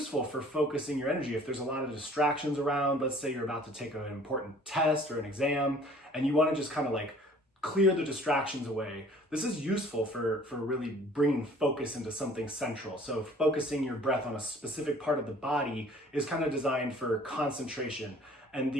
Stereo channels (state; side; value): normal; both; correlation 0.52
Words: for focusing your energy if there's a lot of distractions around. Let's say you're about to take an important test or an exam and you want to just kind of like clear the distractions away. This is useful for really bringing focus into something central. So focusing your breath on a specific part of the body is kind of designed for concentration. And